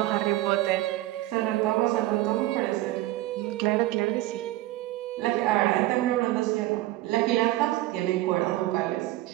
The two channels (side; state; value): left; quieter; 16.4 dB